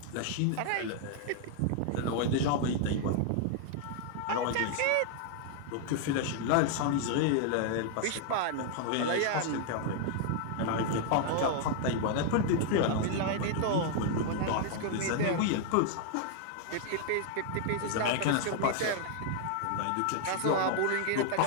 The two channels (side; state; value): both; different; correlation 0.00